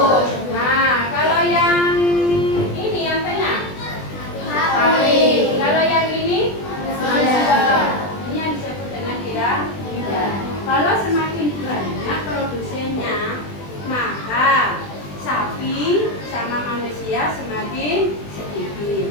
Nah, kalau yang ini yang tengah? Sapi. Kalau yang ini? Manusia. Ini yang disebut dengan piramida. Kalau semakin banyak produsennya, maka sapi sama manusia semakin sedikit.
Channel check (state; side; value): late; right; 20 ms